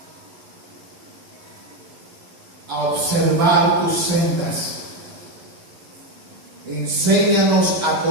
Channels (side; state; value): left; late; 11 ms